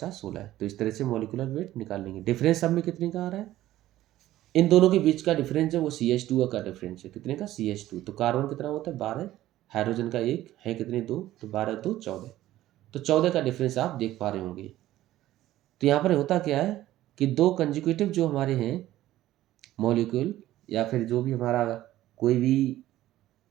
16 है। तो इस तरह से मॉलिक्यूलर वेट निकाल लेंगे। डिफरेंस सब में कितने का आ रहा है? इन दोनों के बीच का डिफरेंस है वो CH2 का डिफरेंस है। कितने का? CH2। तो कार्बन कितना होता है? 12। हाइड्रोजन का 1 है, कितने? 2, तो 12 2 14। तो 14 का डिफरेंस आप देख पा रहे होंगे। तो यहाँ पर होता क्या है कि 2 कंजिक्यूटिव जो हमारे हैं मॉलिक्यूल, या फिर जो भी हमारा कोई भी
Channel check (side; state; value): left; quieter; 14.6 dB